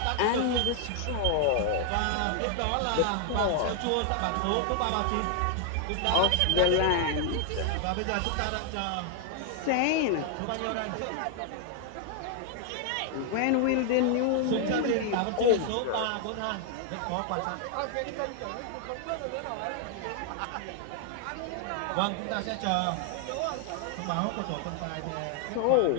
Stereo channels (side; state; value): both; different; correlation 0.00